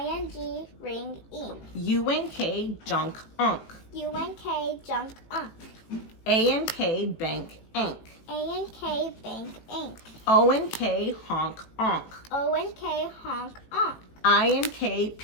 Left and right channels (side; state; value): right; late; 18 ms